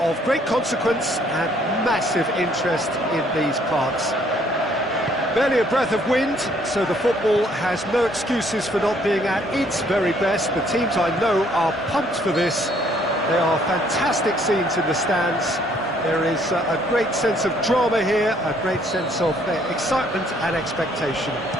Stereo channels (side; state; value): both; normal; correlation 0.64